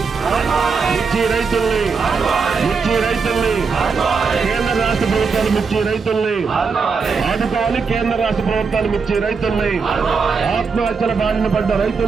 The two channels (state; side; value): quieter; left; 5.1 dB